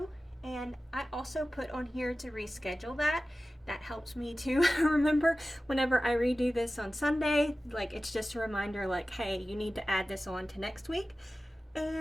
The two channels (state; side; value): normal; both; correlation 0.96